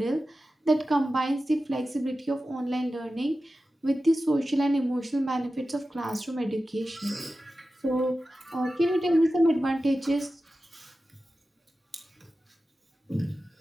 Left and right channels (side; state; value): both; normal; correlation 0.94